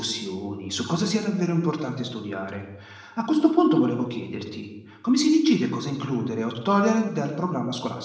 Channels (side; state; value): both; identical; correlation 1.00